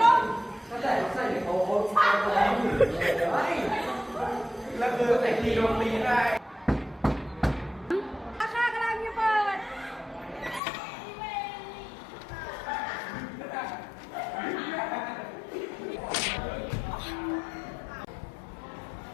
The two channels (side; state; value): right; drops out; at 10.6 s